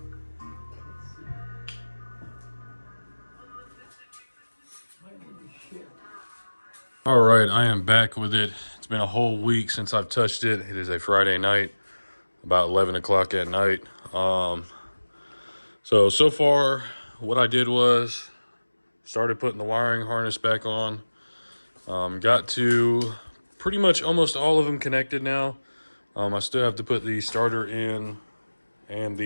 All right, I am back with it. It's been a whole week since I've touched it. It is a Friday night, about 11 o'clock at night. So far, what I did was started putting the wiring harness back on. Got to pretty much almost all of them connected now. I still have to put the starter in and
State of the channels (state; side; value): inverted; both; correlation -1.00